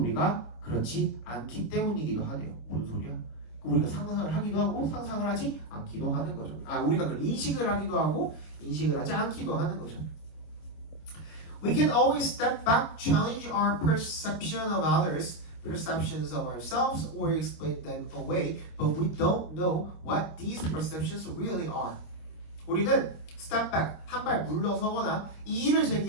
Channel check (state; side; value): late; right; 26 ms